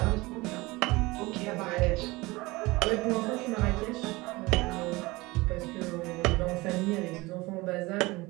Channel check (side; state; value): left; quieter; 21.9 dB